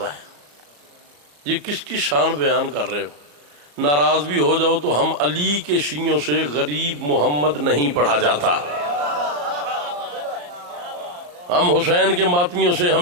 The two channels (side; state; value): left; late; 34 ms